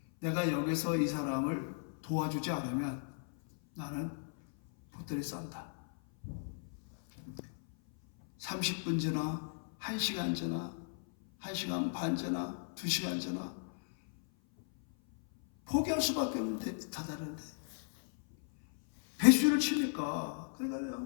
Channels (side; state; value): right; silent; 54 dB below the other